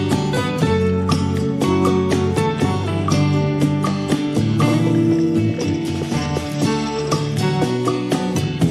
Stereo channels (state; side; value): identical; both; correlation 1.00